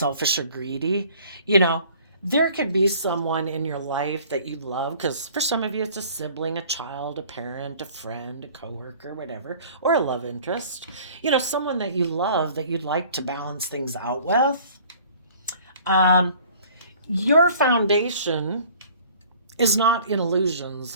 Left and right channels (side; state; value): both; inverted; correlation -0.51